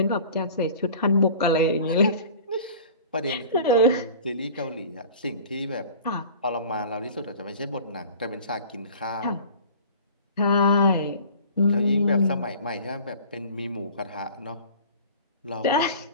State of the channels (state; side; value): inverted; both; correlation -0.43